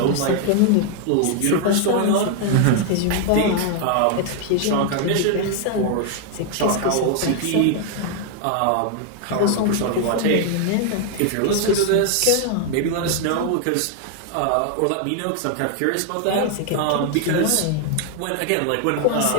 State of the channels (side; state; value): both; different; correlation 0.00